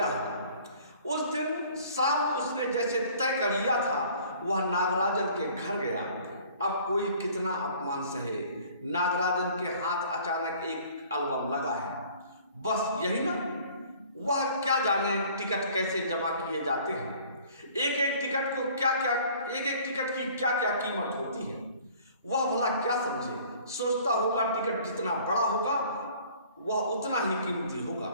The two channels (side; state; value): both; inverted; correlation -0.52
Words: है। उस दिन शाम उसने जैसे तय कर लिया था, वह नागराजन के घर गया। अब कोई कितना अपमान सहे, नागराजन के हाथ अचानक एक एल्बम लगा है, बस यही ना। वह क्या जाने टिकट कैसे जमा किए जाते हैं, एक एक टिकट की क्या क्या कीमत होती है। वह भला क्या समझे, सोचता होगा टिकट जितना बड़ा होगा वह उतना ही कीमती होगा,